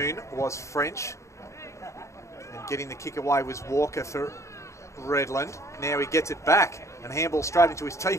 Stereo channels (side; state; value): right; late; 0.14 ms